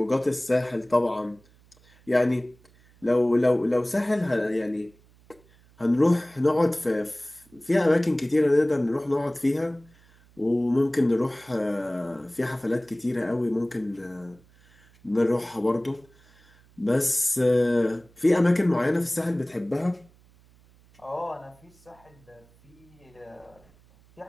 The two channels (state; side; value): noise; right; hum, 29 dB below the sound